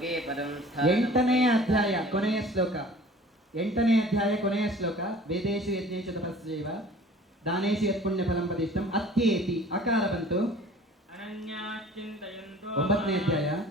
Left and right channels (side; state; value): both; normal; correlation 0.47